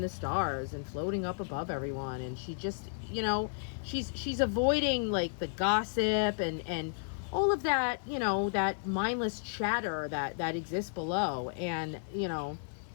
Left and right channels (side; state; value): right; silent; digital silence